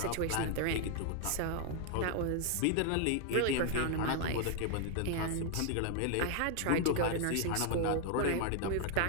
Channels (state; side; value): different; both; correlation 0.00